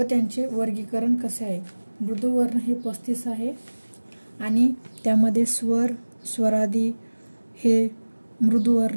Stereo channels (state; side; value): inverted; both; correlation -1.00